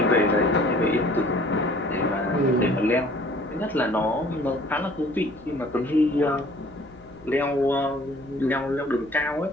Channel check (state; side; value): normal; both; correlation 0.53